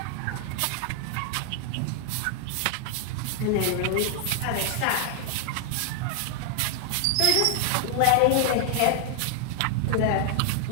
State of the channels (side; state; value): both; different; correlation 0.00